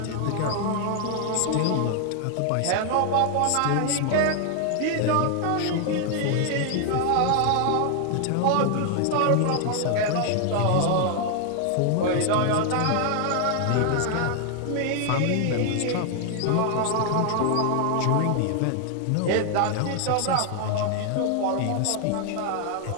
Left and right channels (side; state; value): both; different; correlation 0.00